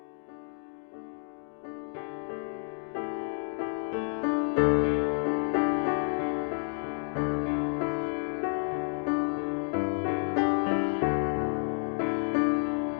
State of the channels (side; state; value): right; silent; 58 dB below the other